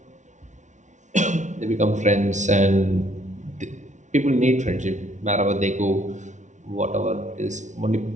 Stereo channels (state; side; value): late; left; 0.35 ms